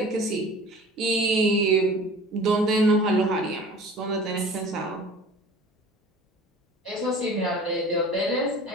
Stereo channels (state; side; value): normal; both; correlation 0.43